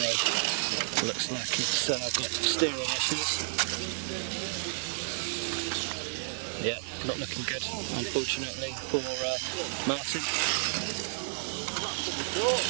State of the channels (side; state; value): left; silent; digital silence